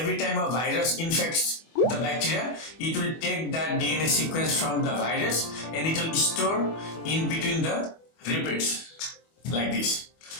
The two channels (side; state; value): right; late; 25 ms